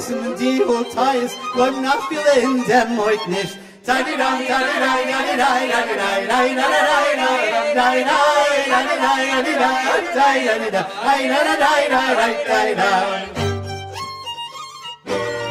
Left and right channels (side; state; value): both; identical; correlation 1.00